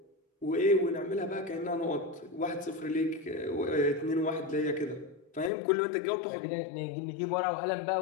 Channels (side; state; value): right; drops out; at 5.5 s